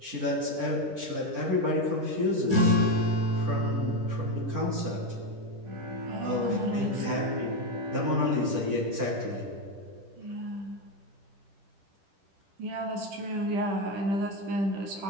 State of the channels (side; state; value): left; late; 10 ms